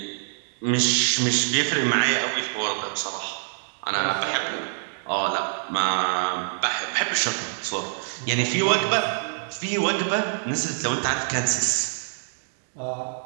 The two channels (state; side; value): silent; left; 62 dB below the other